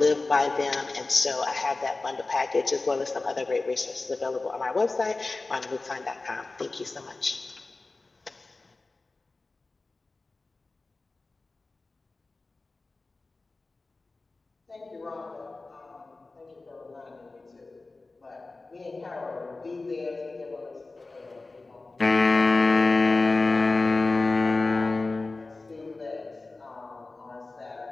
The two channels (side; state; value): right; quieter; 3.4 dB